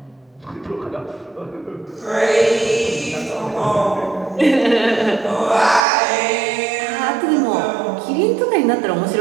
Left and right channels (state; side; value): drops out; left; at 5.9 s